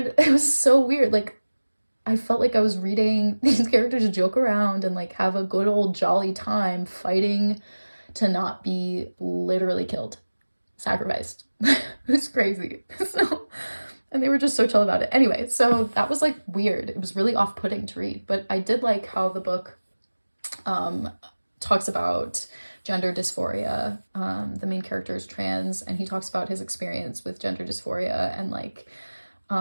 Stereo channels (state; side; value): inverted; both; correlation -1.00